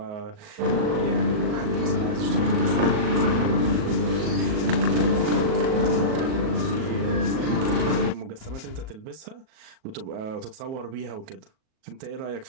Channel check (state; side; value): late; left; 38 ms